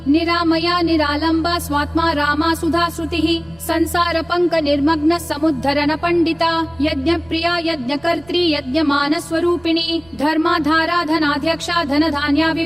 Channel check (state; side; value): noise; right; rumble, 27 dB below the sound